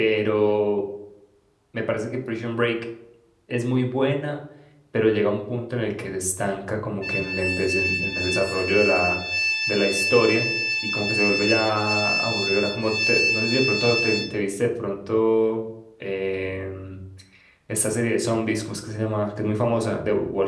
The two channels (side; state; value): both; identical; correlation 1.00